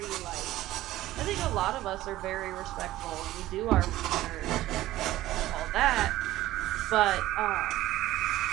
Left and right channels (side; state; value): left; quieter; 15.5 dB